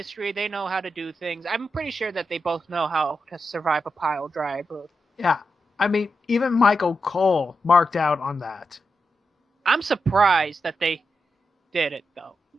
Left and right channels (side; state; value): both; normal; correlation 0.87